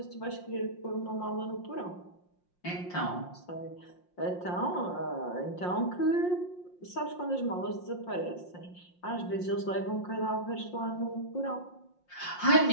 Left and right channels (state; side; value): late; right; 5.6 ms